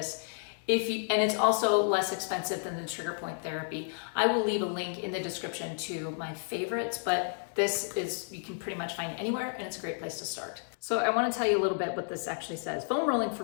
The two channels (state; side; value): silent; right; digital silence